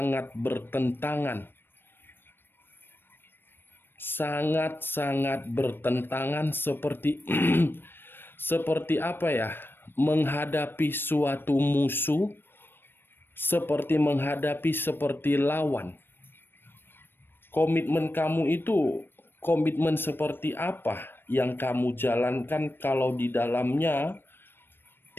bertentangan. Sangat-sangat bertentangan seperti seperti apa ya? Menghadapi suatu musuh, seperti menghadapi seperti lawan. Komitmen kamu itu komitmen seperti apa yang kamu jalankan kalau di dalamnya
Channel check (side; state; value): right; late; 0.099 ms